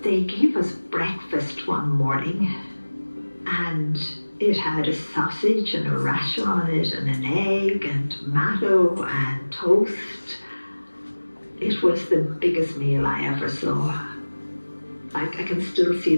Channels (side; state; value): both; inverted; correlation -1.00